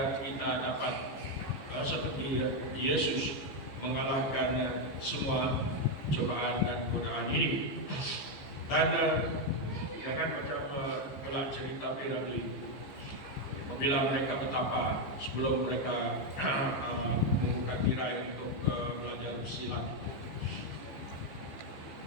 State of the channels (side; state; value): right; late; 15 ms